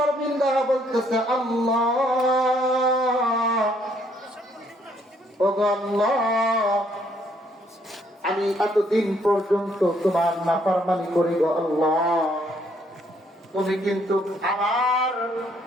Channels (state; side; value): normal; both; correlation 0.68